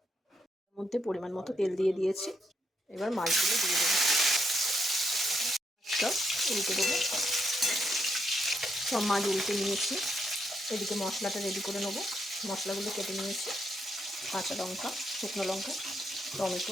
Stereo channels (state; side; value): normal; both; correlation 0.77